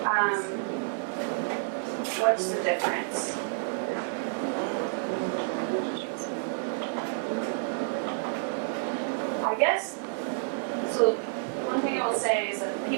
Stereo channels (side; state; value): left; silent; digital silence